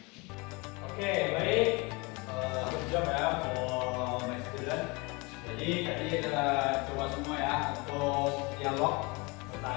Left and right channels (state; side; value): quieter; right; 27.3 dB